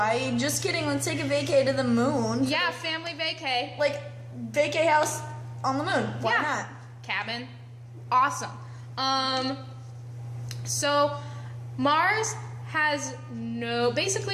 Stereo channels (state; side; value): identical; both; correlation 1.00